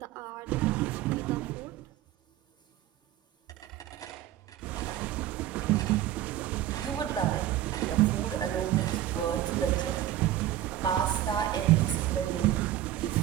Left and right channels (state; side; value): quieter; left; 12.8 dB